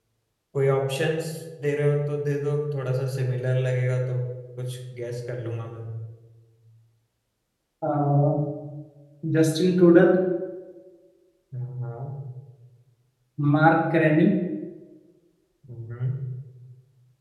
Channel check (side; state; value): both; identical; correlation 1.00